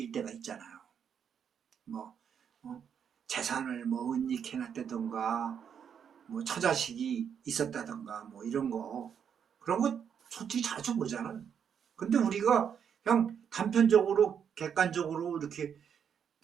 때가 있잖아요. 뭐 재산을 뭐 은닉해놨다던가 뭐 처자식이 있었다던가 뭐 이런 거, 그런 거 솔직히 자주 보잖아. 근데 우리가 그냥 단편적으로 객관적으로 이렇게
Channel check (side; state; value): left; quieter; 7.8 dB